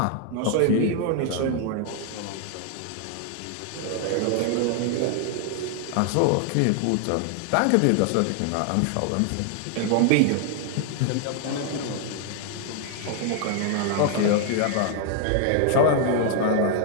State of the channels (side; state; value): both; different; correlation 0.00